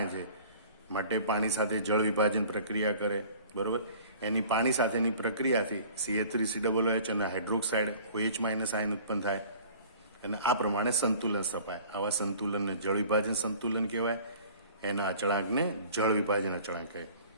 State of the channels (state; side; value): inverted; both; correlation -0.48